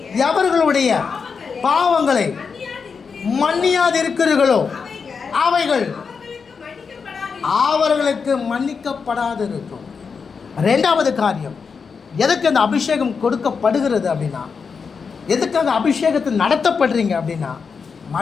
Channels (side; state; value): right; quieter; 5.6 dB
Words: எவர்களுடைய பாவங்களை மன்னியாதிருக்கிறீர்களோ அவைகள் அவர்களுக்கு மன்னிக்கப்படாதிருக்கும். 2வது காரியம், எதுக்கு அந்த அபிஷேகம் கொடுக்கப்படுகிறது அப்படின்னா, எதுக்காக அபிஷேகத்தை நடத்தப்படுறீங்க அப்படின்னா,